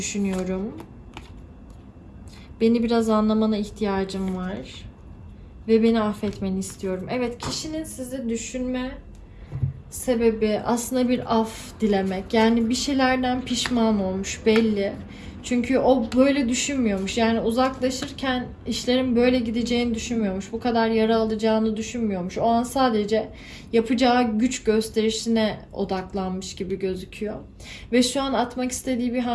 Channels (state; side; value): identical; both; correlation 1.00